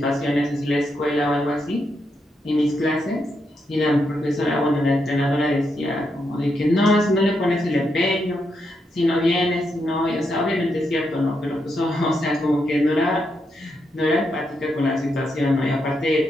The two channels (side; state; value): both; normal; correlation 0.82